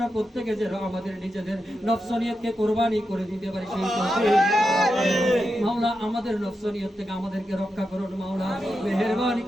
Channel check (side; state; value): both; normal; correlation 0.88